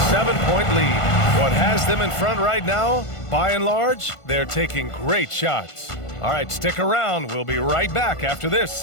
7-point lead. What has them in front right now, by and large, they're taking great shots. All right, stick around. We'll be right back after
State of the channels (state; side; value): late; right; 1.5 ms